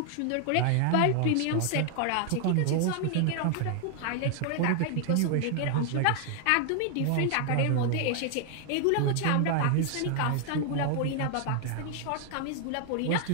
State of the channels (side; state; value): both; different; correlation 0.00